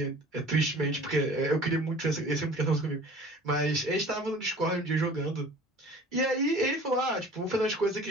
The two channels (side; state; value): both; normal; correlation 0.45